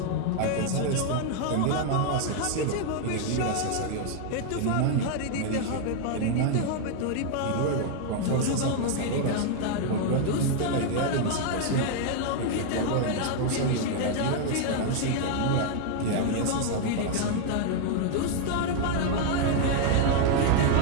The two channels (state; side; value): different; both; correlation 0.00